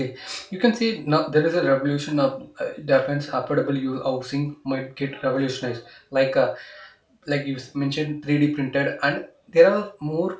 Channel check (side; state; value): both; identical; correlation 1.00